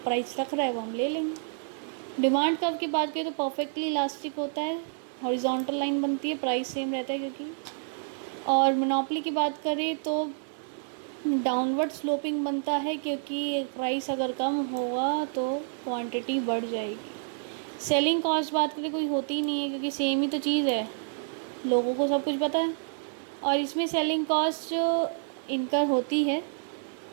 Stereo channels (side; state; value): left; silent; digital silence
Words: रख रहा है वो हम ले लेंगे। डिमांड कर्व की बात करें तो परफेक्टली इलास्टिक होता है, हॉरिजॉन्टल लाइन बनती है, प्राइस सेम रहता है क्योंकि। और मोनोपोली की बात करें तो डाउनवर्ड स्लोपिंग बनता है, क्योंकि प्राइस अगर कम होगा तो क्वांटिटी बढ़ जाएगी। सेलिंग कॉस्ट बात करें कोई होती ही नहीं है, क्योंकि सेम ही तो चीज़ है, लोगों को सब कुछ पता है। और इसमें सेलिंग कॉस्ट इनकर होती है